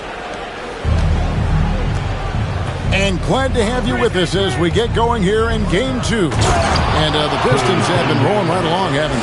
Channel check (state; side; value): identical; both; correlation 1.00